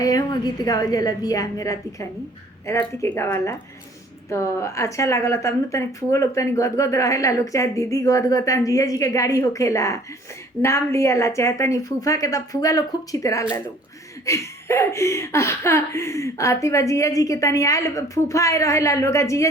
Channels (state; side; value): normal; both; correlation 0.54